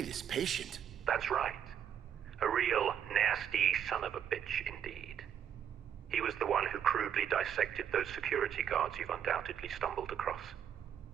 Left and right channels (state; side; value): quieter; left; 9.0 dB